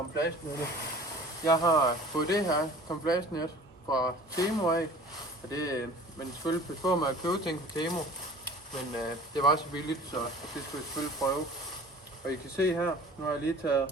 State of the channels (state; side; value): normal; both; correlation 0.45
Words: Jeg har fået det her camouflagenet fra Temu af, og det, men selvfølgelig pas på med at købe ting fra Temu, men det var så billigt, så det skulle jeg selvfølgelig prøve. Og I kan se her, nu har jeg lige taget